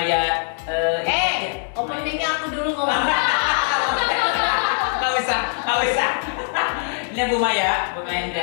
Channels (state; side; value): silent; right; 64 dB below the other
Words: Openingnya aku dulu ngomong. Nggak usah. Ini Bu Maya